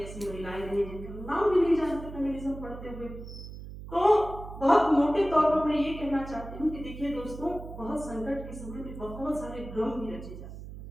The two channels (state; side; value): noise; right; hum, 12 dB below the sound